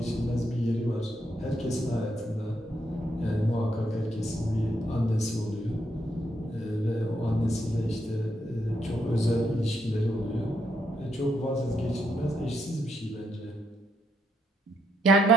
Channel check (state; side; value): normal; both; correlation 0.77